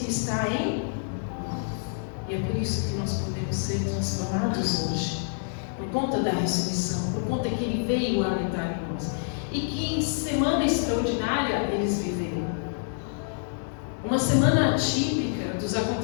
está em nós. E é por isso que nós podemos ser transformados hoje, por conta da ressurreição, por conta que Ele veio habitar em nós. E que semana extraordinária eles viveram. Uma semana atípica dos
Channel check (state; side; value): silent; right; digital silence